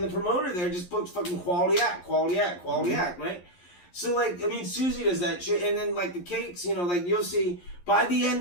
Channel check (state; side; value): late; right; 11 ms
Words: the promoter there just books fucking quality act, right? So, like, I mean, Susie does that shit, and then, like, the cakes, you know, like, you'll see, by the